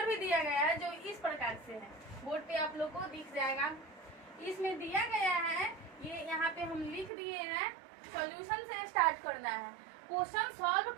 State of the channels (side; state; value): left; drops out; at 7.1 s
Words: भी दिया गया है जो इस प्रकार से है। बोर्ड पे आप लोग को दिख जाएगा। इसमें दिया गया है, ये यहाँ पे हम लिख दिए हैं। सॉल्यूशन से स्टार्ट करना है। क्वेश्चन सॉल्व